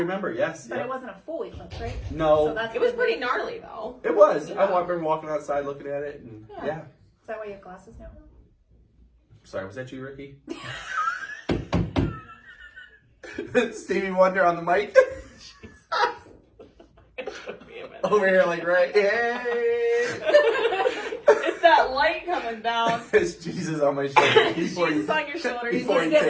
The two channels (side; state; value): both; identical; correlation 1.00